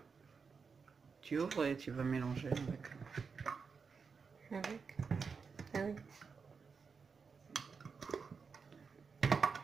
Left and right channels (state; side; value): quieter; left; 5.4 dB